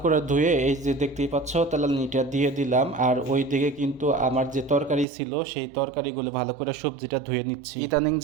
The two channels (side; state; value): left; drops out; at 5.1 s